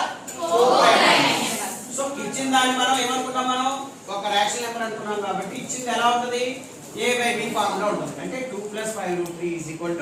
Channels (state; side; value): identical; both; correlation 1.00